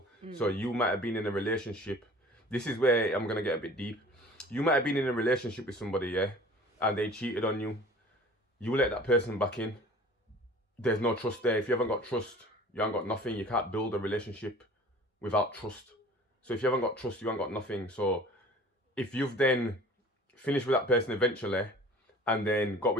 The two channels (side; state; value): both; normal; correlation 0.46